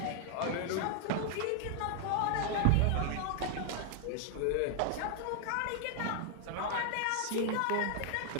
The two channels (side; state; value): both; different; correlation 0.00